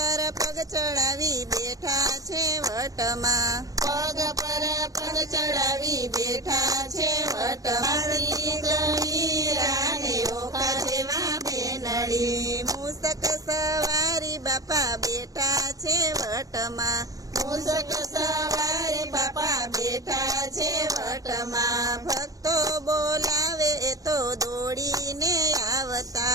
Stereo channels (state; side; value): late; left; 0.17 ms